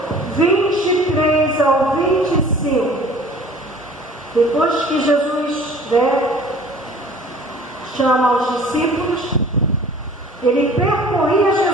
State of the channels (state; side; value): normal; both; correlation 0.48